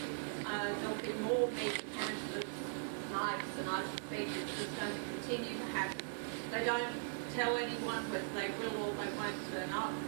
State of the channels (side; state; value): left; silent; 51 dB below the other